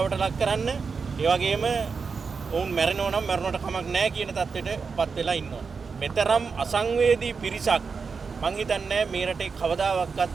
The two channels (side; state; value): left; quieter; 5.2 dB